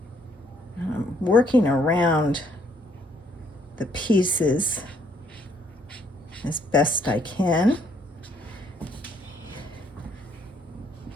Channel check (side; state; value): both; normal; correlation 0.67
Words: I'm working around the pieces as best I can.